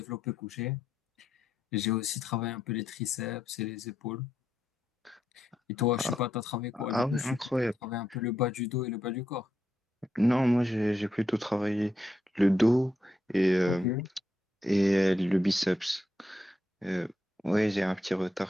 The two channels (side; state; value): both; normal; correlation 0.82